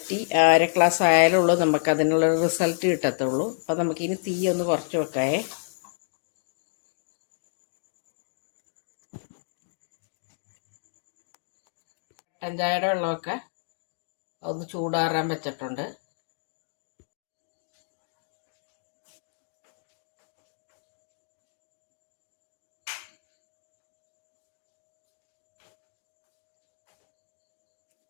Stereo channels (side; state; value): right; silent; digital silence